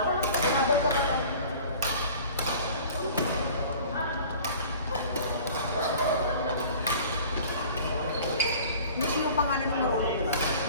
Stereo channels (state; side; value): inverted; both; correlation -0.45